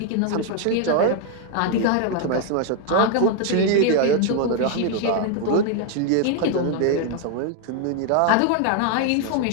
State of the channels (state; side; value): different; both; correlation 0.00